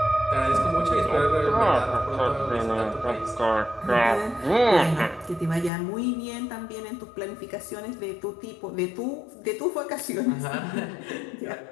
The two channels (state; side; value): drops out; right; at 5.7 s